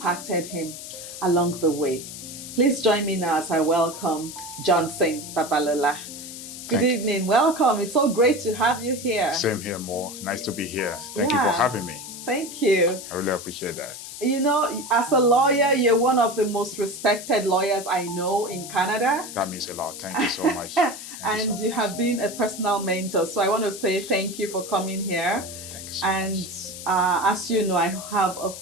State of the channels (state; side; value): noise; left; hiss, 11 dB below the sound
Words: him along the way. Please join me now as I welcome Johnson Babalola. Good evening, welcome. It's so great to have you here. Same here, Mo. Nice to be here. Thank you for having me. Thank you. I really appreciate that. You know, as a lawyer, you're one of the most respected lawyers I know in Canada. That means a lot. Thank you so much. And you have been a personal mentor. So I want to say thank you for coming here. Thank you so much. As you know, I have a